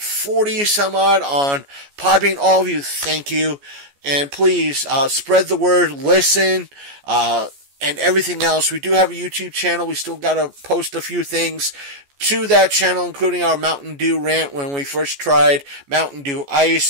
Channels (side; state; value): left; late; 14 ms